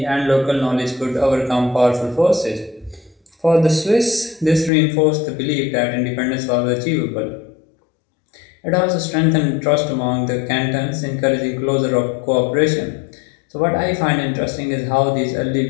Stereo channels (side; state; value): right; drops out; at 4.7 s